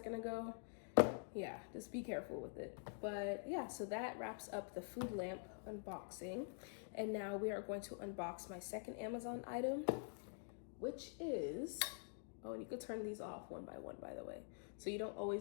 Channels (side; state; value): right; silent; digital silence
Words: ago, yeah, just be careful with it. But yeah, so that wraps up the food lamp unboxing. And now we are going to unbox my second Amazon item, which is, oh, and you could turn these off one by one, by the way. So you don't